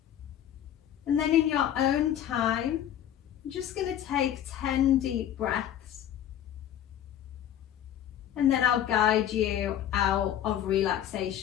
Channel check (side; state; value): right; quieter; 10.7 dB